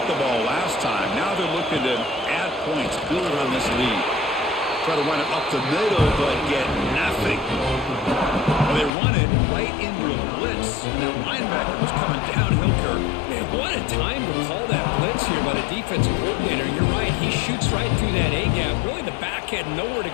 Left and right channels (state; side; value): drops out; right; at 8.9 s